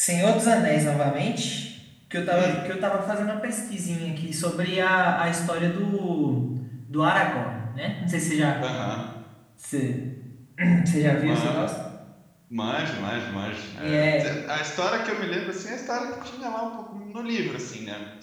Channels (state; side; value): identical; both; correlation 1.00